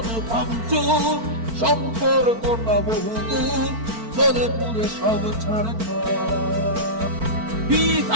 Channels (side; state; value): left; late; 4.4 ms